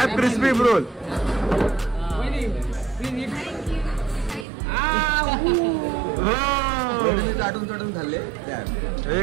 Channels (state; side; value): drops out; left; at 4.5 s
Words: crispy roll. चाटून खाल्ले.